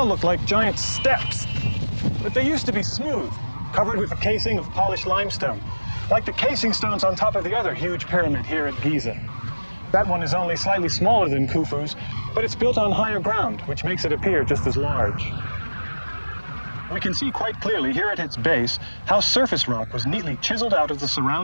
look like giant steps, but they used to be smooth, covered with a casing of polished limestone, like the casing stones on top of the other huge pyramid here at Giza. That one is only slightly smaller than Khufu's, but it's built on higher ground, which makes it appear just as large. We can see quite clearly here at its base how surface rock was neatly chiseled out of the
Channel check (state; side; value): inverted; both; correlation -1.00